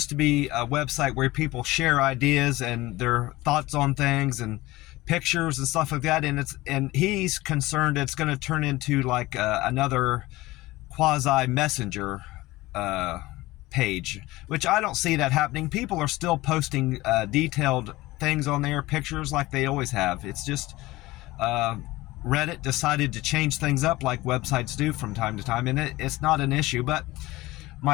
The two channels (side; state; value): right; quieter; 19.2 dB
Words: to be a website where people share ideas and their thoughts on things and pictures and stuff like that. And he's concerned it's going to turn into like another quasi messenger page, which I don't see that happening. People are still posting detailed things on there, pictures like they always have. It's just Reddit decided to change things up like websites do from time to time, and it's not an issue. But